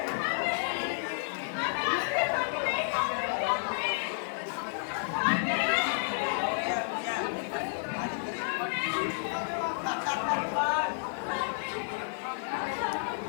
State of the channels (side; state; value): right; silent; digital silence